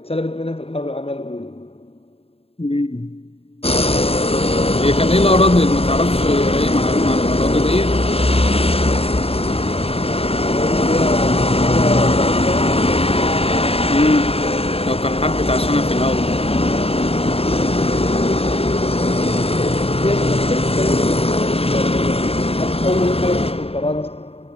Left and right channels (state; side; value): late; right; 0.28 ms